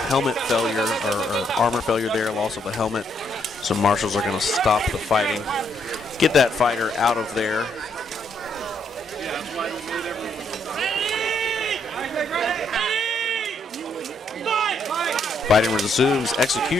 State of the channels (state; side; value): normal; both; correlation 0.73